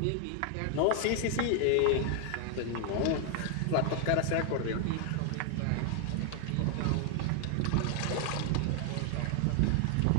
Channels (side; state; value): both; different; correlation 0.00